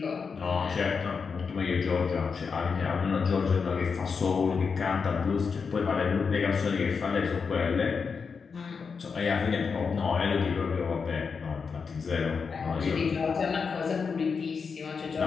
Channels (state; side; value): quieter; right; 5.5 dB